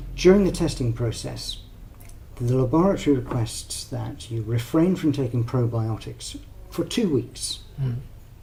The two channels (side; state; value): both; identical; correlation 1.00